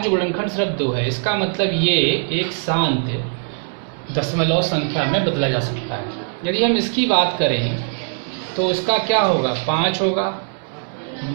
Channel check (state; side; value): silent; left; digital silence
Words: गुणनखंड सिर्फ 2 है। इसका मतलब ये एक शांत दशमलव संख्या में बदला जा सकता है। यदि हम इसकी बात करें तो उसका क्या होगा, 5 होगा,